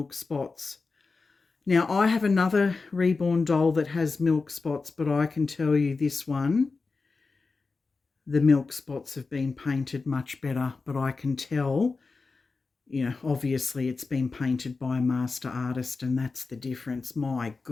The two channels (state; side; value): quieter; right; 4.1 dB